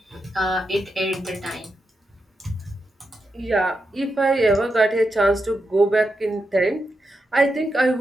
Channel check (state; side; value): normal; both; correlation 0.86